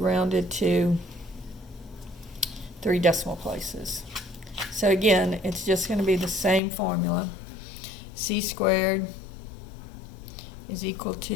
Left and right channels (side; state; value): right; drops out; at 6.6 s